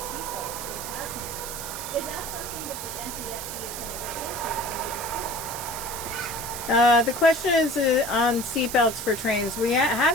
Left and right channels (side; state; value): right; noise; hiss, 7 dB below the sound